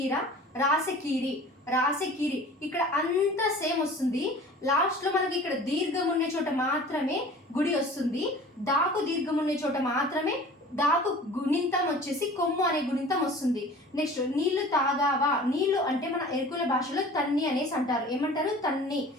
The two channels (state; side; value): normal; both; correlation 0.43